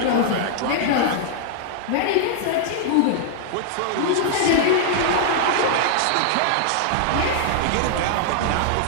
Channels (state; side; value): different; both; correlation -0.01